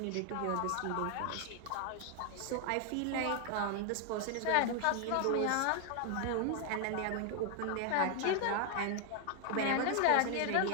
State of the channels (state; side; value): different; both; correlation 0.00